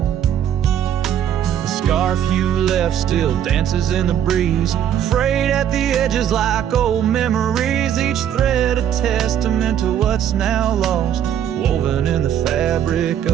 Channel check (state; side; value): quieter; left; 9.8 dB